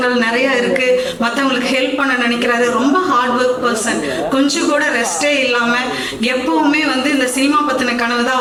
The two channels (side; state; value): both; identical; correlation 1.00